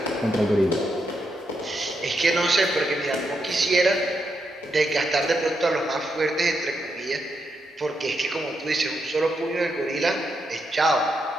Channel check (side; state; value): both; normal; correlation 0.82